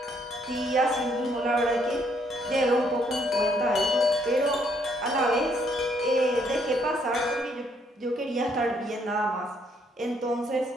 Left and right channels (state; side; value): normal; both; correlation 0.69